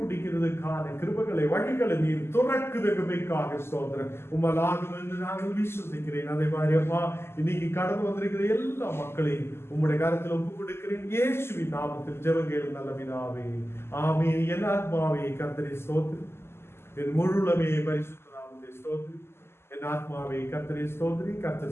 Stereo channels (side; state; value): right; late; 0.12 ms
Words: முடிக்கிறதுக்கான கிருபைகளை வழிகளை நீர் துறக்குதற்காக ஸ்தோத்திரம். உம்மலாகும் என்று நாங்கள் விசுவசிக்கிறேன். அதே மாதிரி அப்பா இன்னைக்கு கடந்து வந்திருக்கிற எல்லா மக்களையும் உம்முடைய கரத்தில் ஒப்புக் கொடுக்கிறேன். இயேசுவின் நாமத்தில் ஜெபங்கள் நல்ல பிதாவே, ஆமென். என் ஆத்மாவே கர்த்தரை ஸ்தோத்திரி, என் முழுலமே பரிசுத்த நாமத்தை ஸ்தோத்திரி. என் ஆத்மாவே கர்த்தரை ஸ்தோத்திரி,